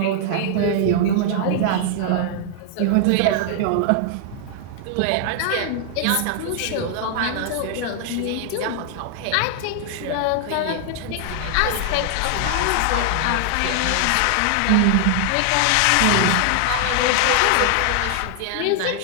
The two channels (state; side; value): different; both; correlation 0.00